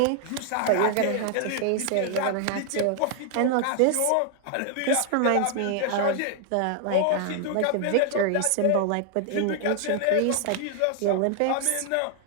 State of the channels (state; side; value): different; both; correlation 0.00